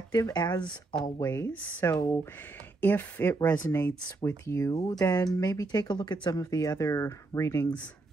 as always. So if it resonates with you, then maybe take a look at some of the other readings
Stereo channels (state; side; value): quieter; left; 3.3 dB